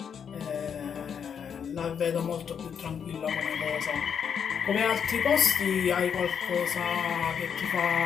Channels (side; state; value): right; quieter; 7.4 dB